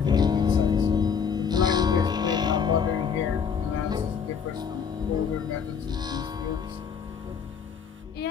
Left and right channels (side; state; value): right; quieter; 6.7 dB